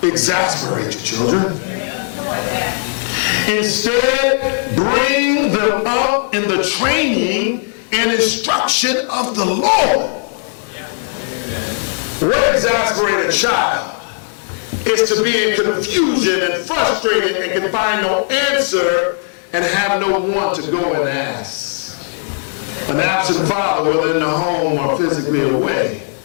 exasperate your children. Instead, bring them up in the training and instruction of the Lord. What exasperates a child is to be in confusion and frustrated and can find no answer and have no one to go and ask. An absent father, whether in the home or physically away,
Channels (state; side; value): silent; right; 59 dB below the other